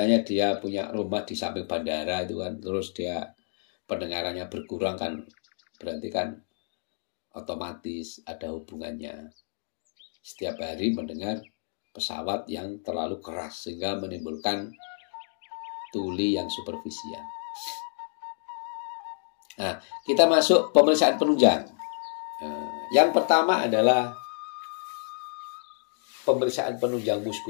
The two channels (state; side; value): silent; right; digital silence